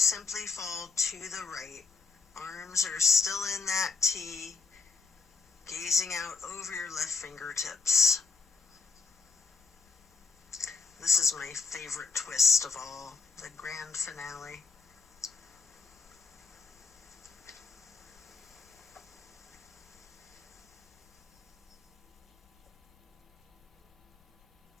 fall to the right. Arms are still in that T, gazing out over your left fingertips. This is my favorite twist of all, the grand finale.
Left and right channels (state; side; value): quieter; right; 4.7 dB